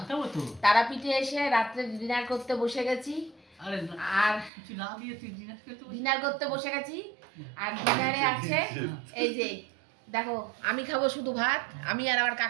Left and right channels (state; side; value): drops out; left; at 4.5 s